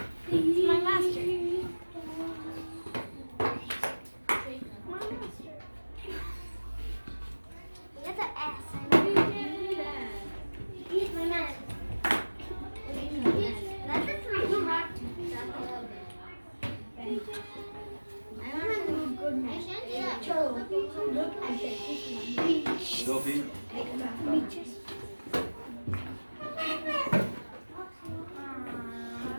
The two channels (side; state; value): both; inverted; correlation -1.00